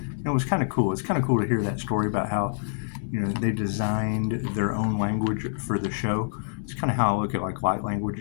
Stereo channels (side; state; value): right; silent; digital silence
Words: It was kind of cool. It's kind of cool to hear that story about how, they designed their own language for the show. It's kind of how I look at like light language